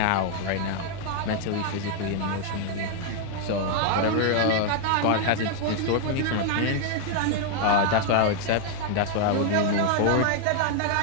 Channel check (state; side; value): different; both; correlation 0.00